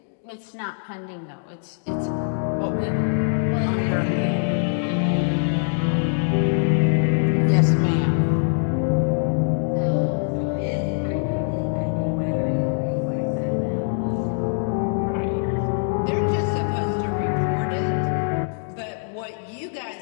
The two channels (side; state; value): right; silent; digital silence